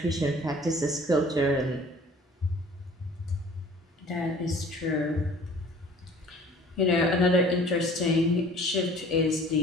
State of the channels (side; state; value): both; normal; correlation 0.49